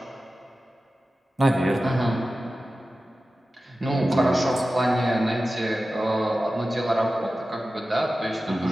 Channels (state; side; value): normal; both; correlation 0.95